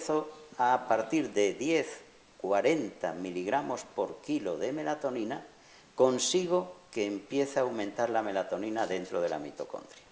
a partir de 10, 40 miligramos por kilo de melatonina, consigo que empiece a aumentar la melatonina dentro de la mitocondria.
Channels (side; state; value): both; identical; correlation 1.00